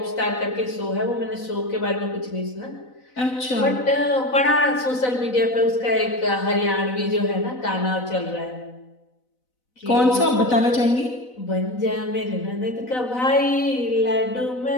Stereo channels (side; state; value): right; late; 4.0 ms